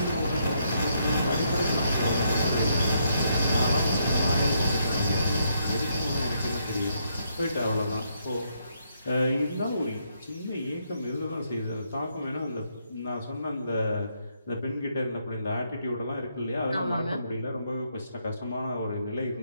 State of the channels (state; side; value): inverted; both; correlation -0.75